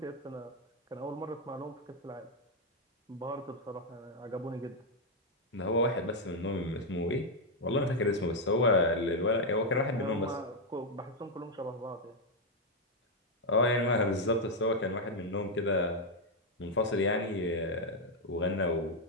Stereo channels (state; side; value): normal; both; correlation 0.01